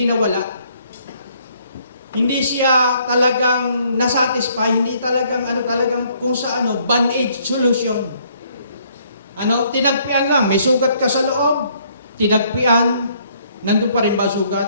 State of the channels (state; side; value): inverted; both; correlation -0.65